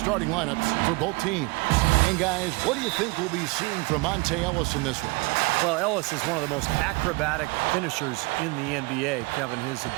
lineups for both teams. And guys, what do you think we'll be seeing from Monte Ellis in this one? Well, Ellis is one of the most acrobatic finishers in the NBA, Kevin. His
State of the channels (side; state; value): left; quieter; 26.2 dB